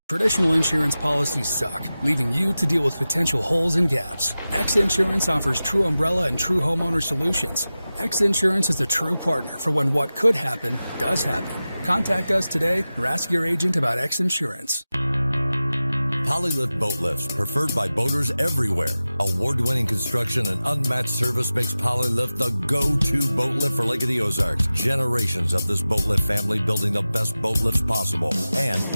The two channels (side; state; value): both; inverted; correlation -0.95